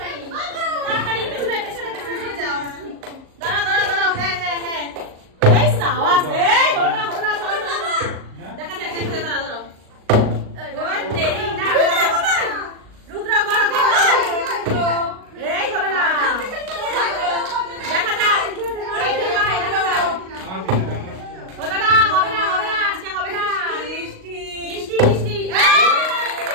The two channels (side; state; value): left; late; 38 ms